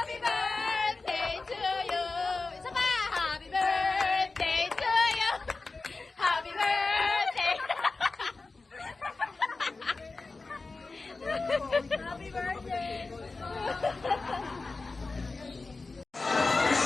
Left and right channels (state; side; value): quieter; right; 3.7 dB